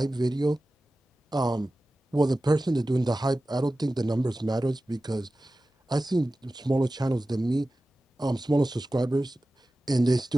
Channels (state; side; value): normal; both; correlation 0.95